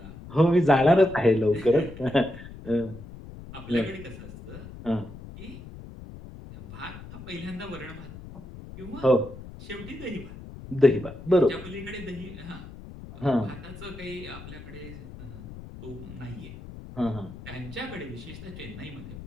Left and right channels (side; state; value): left; noise; rumble, 14 dB below the sound